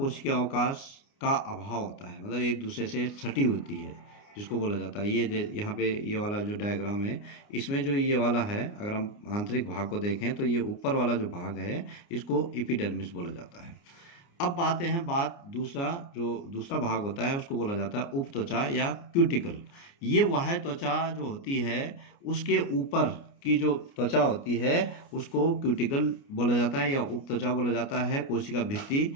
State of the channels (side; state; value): right; late; 29 ms